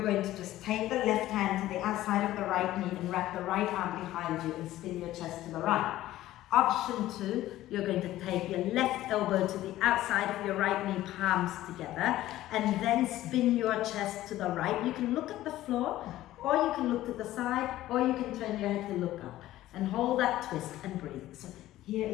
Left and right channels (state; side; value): quieter; right; 14.9 dB